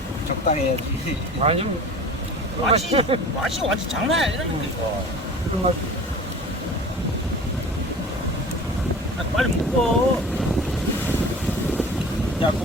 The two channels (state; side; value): normal; both; correlation 0.40